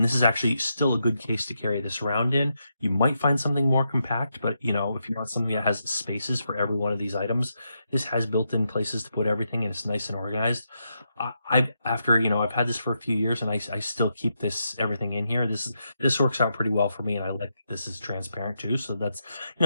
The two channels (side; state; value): both; inverted; correlation -0.83